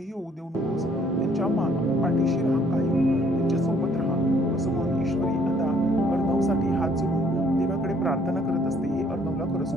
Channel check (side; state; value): both; normal; correlation 0.62